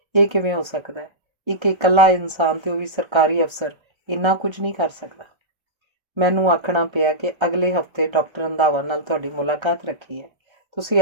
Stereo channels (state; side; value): late; left; 1.3 ms